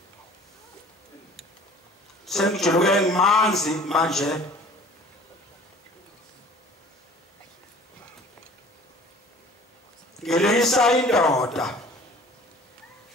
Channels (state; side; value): normal; both; correlation 0.48